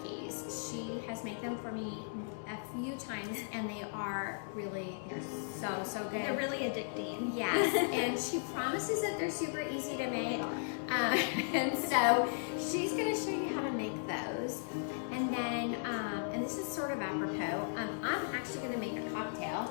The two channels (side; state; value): right; silent; digital silence